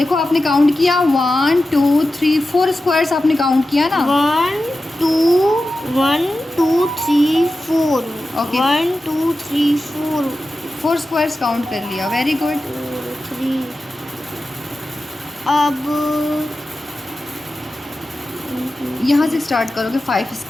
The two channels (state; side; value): normal; both; correlation 0.93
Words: आपने काउंट किया 1 2 3 4 स्क्वायर्स आपने काउंट किया ना। 1 2 3 4 Okay. 1 2 3 4 4 स्क्वायर्स काउंट कर लिया, वेरी गुड। 3। अब यहाँ से स्टार्ट करोगे, 5